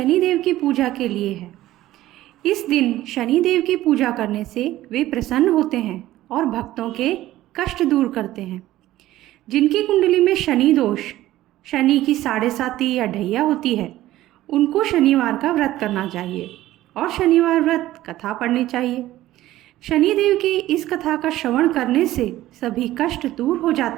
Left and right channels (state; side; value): quieter; left; 15.2 dB